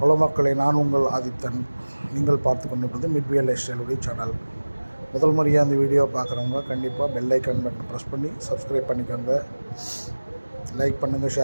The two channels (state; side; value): inverted; both; correlation -1.00